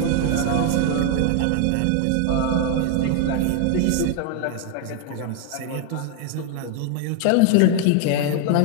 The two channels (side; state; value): both; different; correlation 0.00